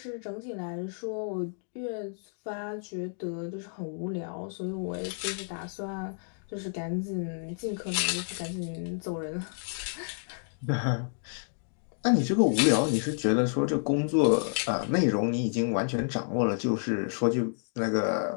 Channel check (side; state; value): right; silent; digital silence